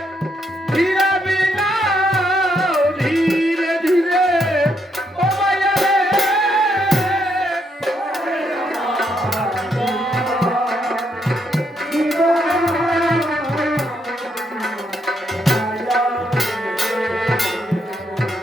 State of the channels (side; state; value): both; normal; correlation 0.76